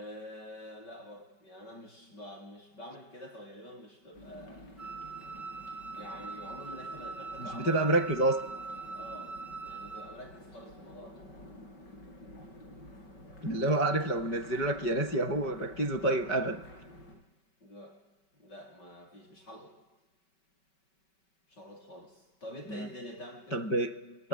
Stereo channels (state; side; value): late; right; 5.2 ms